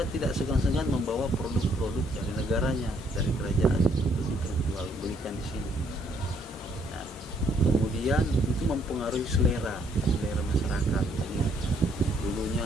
tidak segan-segan membawa produk-produk dari negaranya, dari kerajaan untuk diperjualbelikan di sini. Nah, kemudian itu mempengaruhi selera masyarakat. Jadi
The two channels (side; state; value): both; normal; correlation 0.68